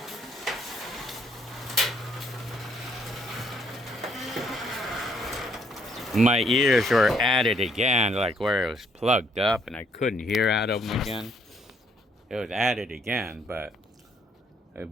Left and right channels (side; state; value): both; normal; correlation 0.68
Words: My ears were at it again, like where it was plugged up, and I couldn't hear out of them again. It was at it again, but